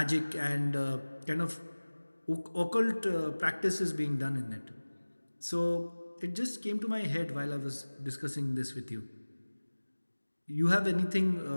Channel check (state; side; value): inverted; both; correlation -1.00